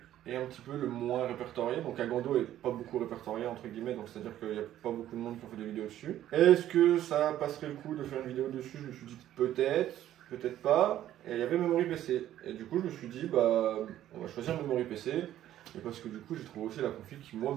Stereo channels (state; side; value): quieter; left; 12.4 dB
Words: un petit peu le moins répertorié? Donc Agando est pas beaucoup répertorié, entre guillemets, donc c'est-à-dire qu'il n'y a pas beaucoup de monde qui ont fait des vidéos dessus. Est-ce que ça passerait le coup de faire une vidéo dessus? Je me suis dit peut-être, peut-être pas. Et il y avait Memory PC. Et du coup, je me suis dit, on va choisir Memory PC. Et parce que du coup, j'ai trouvé aussi la config qui, moi,